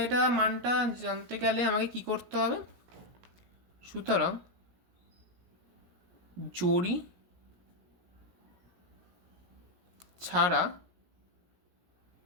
এটা মানটা জানতে গেলে আমাকে কি করতে হবে? সুতরাং জরি ছাড়া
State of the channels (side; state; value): left; late; 17 ms